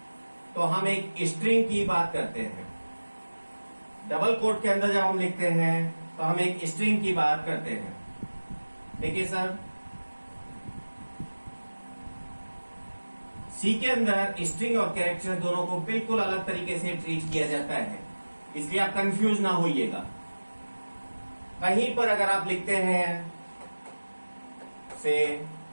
तो हम एक स्ट्रिंग की बात करते हैं। डबल कोट के अंदर जब हम लिखते हैं तो हम एक स्ट्रिंग की बात करते हैं। देखिए सर, सी के अंदर स्ट्रिंग और कैरेक्टर दोनों को बिल्कुल अलग तरीके से ट्रीट किया जाता है, इसलिए आप कंफ्यूज ना होइएगा। कहीं पर अगर आप लिखते हैं से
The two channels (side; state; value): both; inverted; correlation -1.00